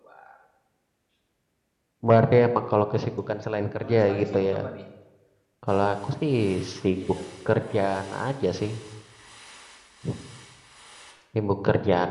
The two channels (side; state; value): both; identical; correlation 1.00